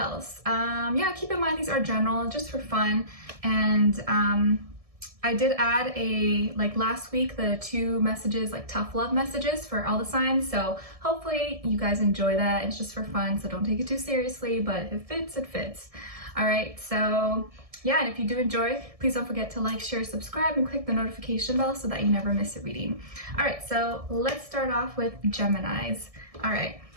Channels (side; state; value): left; late; 1.7 ms